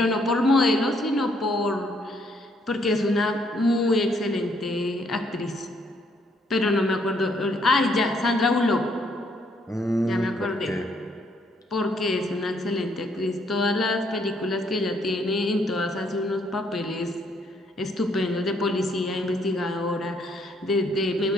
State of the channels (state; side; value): normal; both; correlation 0.70